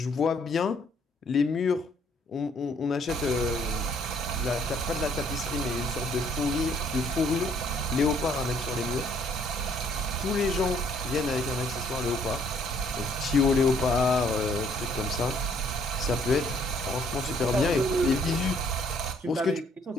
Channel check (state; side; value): normal; both; correlation 0.64